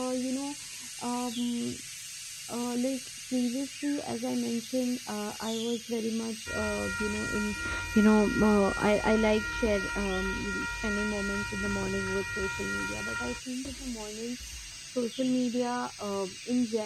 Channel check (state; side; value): identical; both; correlation 1.00